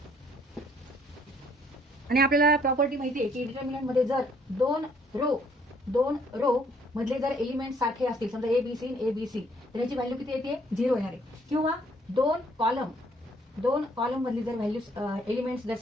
आणि आपल्याला प्रॉपर्टी माहिती आहे की डिटरमिनंट मध्ये जर दोन रो मधले जर एलिमेंट सारखे असतील, समजा A B C A B C, तर याची व्हॅल्यू किती येते? 0 येणार आहे. किंवा दोन कॉलम मधली जर व्हॅल्यू एलिमेंट्स जर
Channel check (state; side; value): normal; both; correlation 0.64